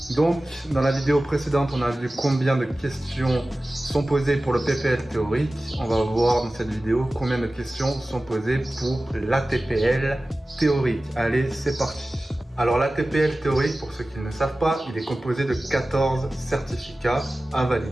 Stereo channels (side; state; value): both; normal; correlation 0.96